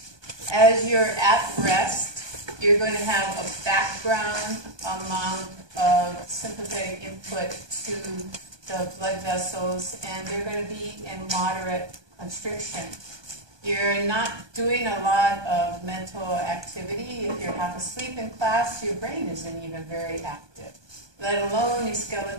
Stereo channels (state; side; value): late; left; 1.2 ms